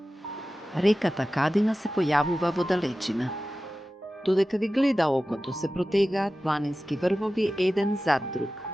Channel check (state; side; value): normal; both; correlation 0.95